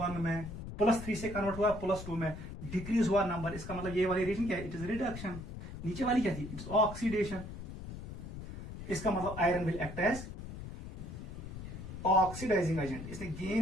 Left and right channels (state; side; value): noise; left; rumble, 9 dB below the sound